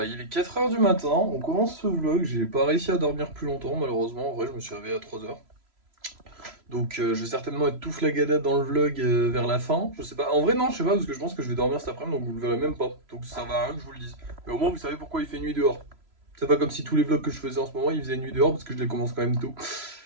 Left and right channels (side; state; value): left; late; 3.0 ms